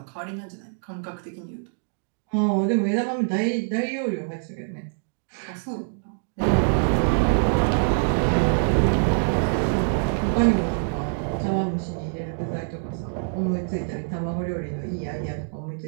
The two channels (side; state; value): left; silent; digital silence